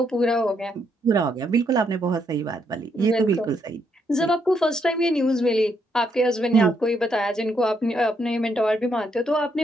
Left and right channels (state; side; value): normal; both; correlation 0.76